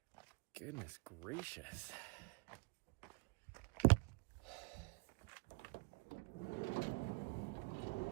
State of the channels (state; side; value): quieter; left; 29.7 dB